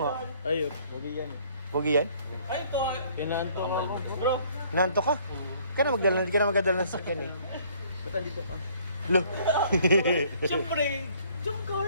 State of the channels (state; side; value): inverted; both; correlation -0.60